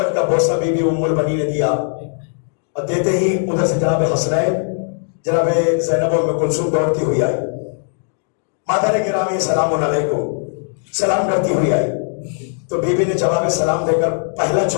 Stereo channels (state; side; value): silent; right; digital silence